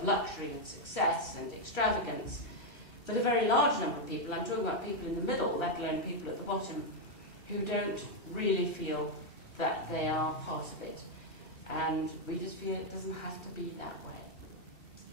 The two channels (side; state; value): right; late; 2.7 ms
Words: luxury and success and extravagance. But a very large number of people, I'm talking about people in the middle, let alone people at the bottom, who don't really feel that they are part of it. And we just feel it doesn't have to be that way.